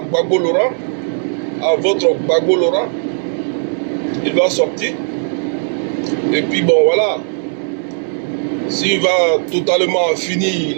Laurent, à votre Gbagbo Laurent, il va sortir. Et puis bon, voilà. S'il va totalement finir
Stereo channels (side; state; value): left; silent; digital silence